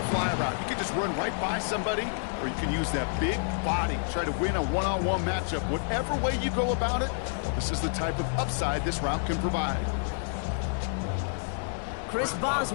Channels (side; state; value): right; silent; 59 dB below the other